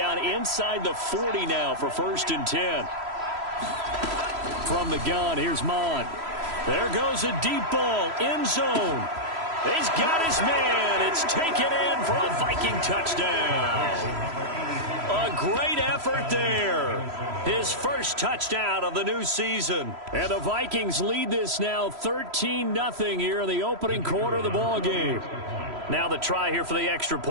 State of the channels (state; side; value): late; left; 3.0 ms